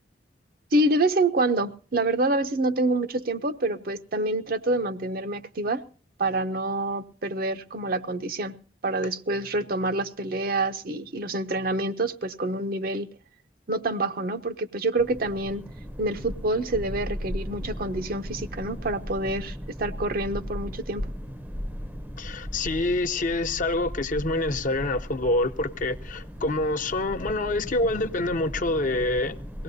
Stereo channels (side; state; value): both; normal; correlation 0.20